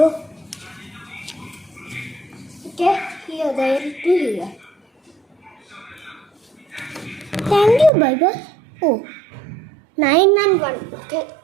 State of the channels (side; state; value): left; drops out; at 7.9 s